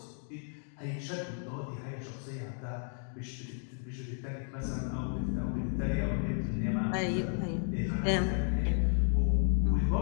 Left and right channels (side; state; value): right; silent; 56 dB below the other